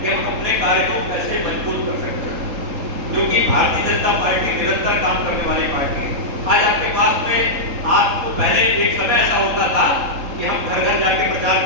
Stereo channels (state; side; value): late; left; 3.7 ms